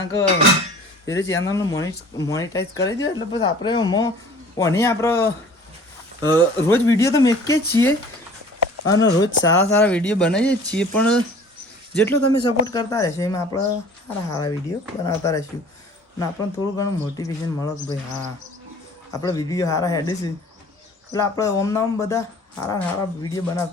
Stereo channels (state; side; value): normal; both; correlation 0.47